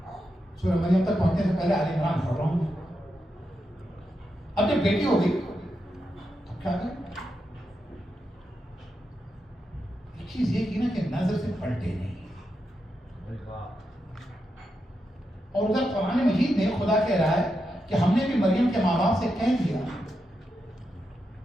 सूरह मरियम तक पहुंचने से पहले आले इमरान पढ़ रहा हूं। अब जब बेटी हो गई तो क्या करें? एक चीज ये की ना कि नजर से पलटे नहीं। और उधर कुरान मजीद में खुदा कह रहा है कि हमने भी मरियम के माँ बाप से कह दिया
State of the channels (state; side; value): normal; both; correlation 0.86